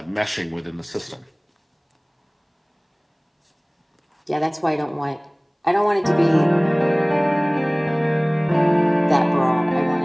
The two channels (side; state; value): both; identical; correlation 1.00